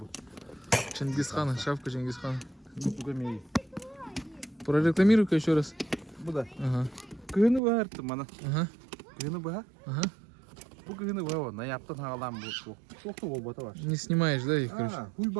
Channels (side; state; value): left; drops out; at 7.6 s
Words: бұл. Чингисхана, шапка Чингисхана. Бұға мей. Прорекламируй-ка еще раз. Бұда. Ага. Күйіні бұға әртім мана. Ага. Күйіні бұға? Ага. Бұл күйіні бұға оны. Яптын ғалам бұл. Соқты ол бата бар. Не снимаешь, да, их, короче? Хуй